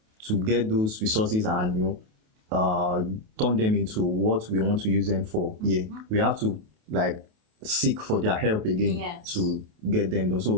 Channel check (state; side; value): late; left; 28 ms